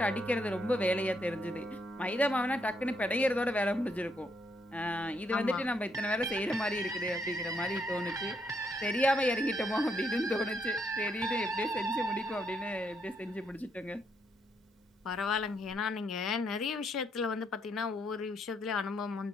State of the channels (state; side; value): normal; both; correlation 0.75